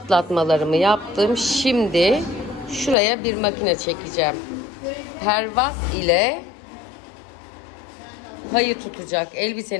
yaptım. Şimdi şuraya bir makine çekeceğim. Pervaz ile payı tutacak.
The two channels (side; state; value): right; drops out; at 3.0 s